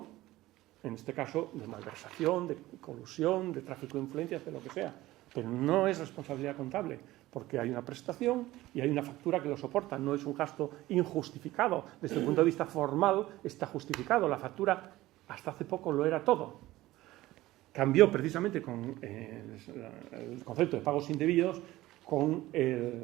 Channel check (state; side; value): quieter; left; 17.1 dB